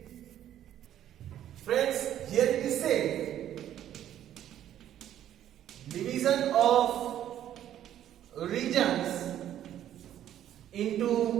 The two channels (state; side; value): quieter; left; 11.3 dB